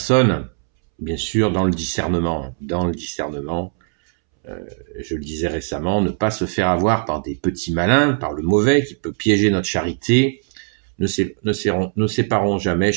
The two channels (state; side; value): silent; left; 66 dB below the other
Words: bien sûr, dans le discernement. Dans le discernement, je le disais récemment, ne pas se faire avoir par des petits malins, par le mauvais qui peut piéger notre charité. Ne séparons jamais